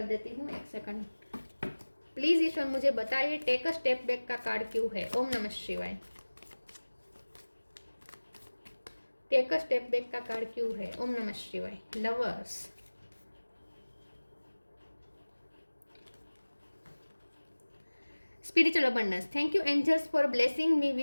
देती हूँ, एक सेकंड प्लीज ईश्वर मुझे बताइए टेक अ स्टेप बैक का कार्ड क्यों है। ओम नमः शिवाय। टेक अ स्टेप बैक का कार्ड क्यों है? ओम नमः शिवाय। Lovers, spiritual abundance, thank you angels for blessing me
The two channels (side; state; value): both; inverted; correlation -1.00